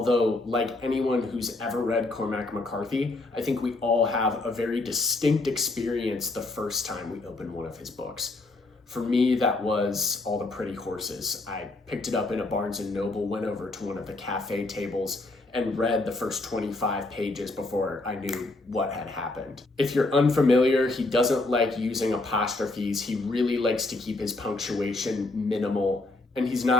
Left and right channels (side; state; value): right; quieter; 3.0 dB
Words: like anyone who's ever read Cormac McCarthy, I think we all have a very distinct experience the first time we open one of his books. For me, that was All the Pretty Horses. I picked it up in a Barnes & Noble, went over to one of the cafe tables, and read the first 25 pages before I knew what had happened. If you're unfamiliar, he doesn't like using apostrophes. He really likes to keep his punctuation minimal, and he's